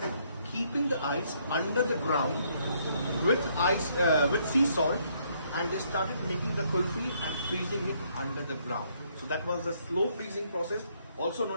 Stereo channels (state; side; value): inverted; both; correlation -0.69